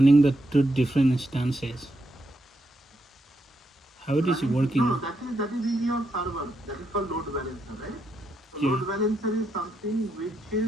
the two different instances? How it is working? No, that is in your server. That is called load balancer, right? So Yeah. load balancer is something which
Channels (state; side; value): normal; both; correlation 0.80